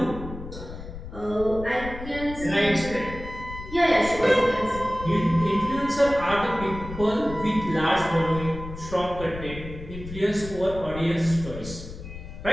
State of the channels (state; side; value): noise; left; rumble, 11 dB below the sound